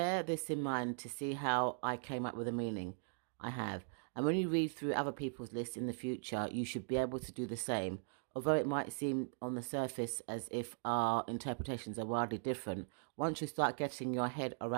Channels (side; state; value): left; silent; digital silence